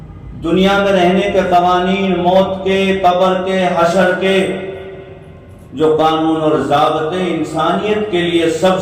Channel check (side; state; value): both; identical; correlation 1.00